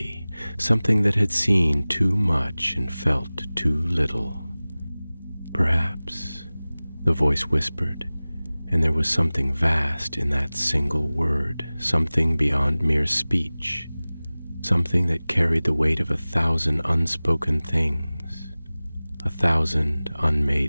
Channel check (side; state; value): both; inverted; correlation -0.99